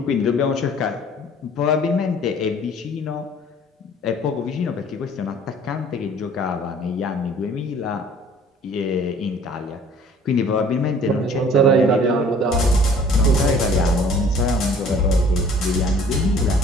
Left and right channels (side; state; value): both; normal; correlation 0.52